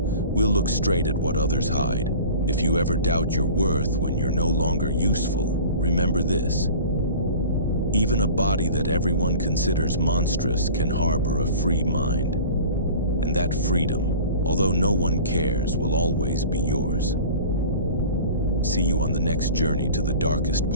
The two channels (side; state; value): both; inverted; correlation -0.41